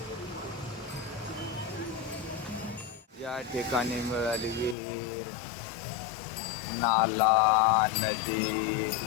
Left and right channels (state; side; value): drops out; right; at 4.8 s